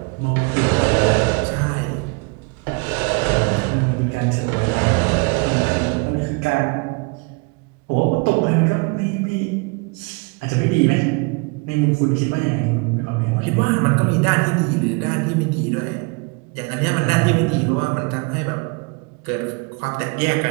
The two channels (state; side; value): quieter; left; 30.1 dB